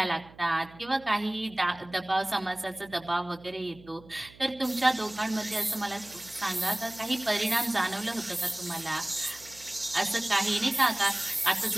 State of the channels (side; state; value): right; noise; hum, 22 dB below the sound